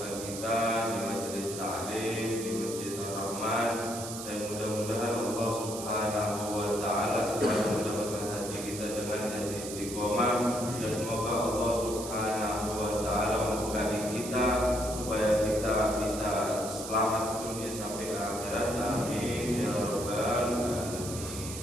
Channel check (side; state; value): right; noise; hiss, 9 dB below the sound